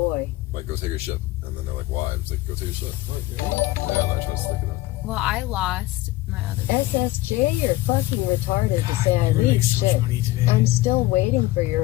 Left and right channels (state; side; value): quieter; right; 17.8 dB